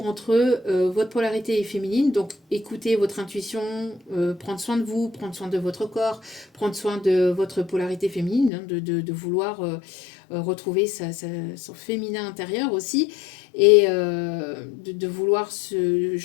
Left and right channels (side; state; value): right; drops out; at 8.5 s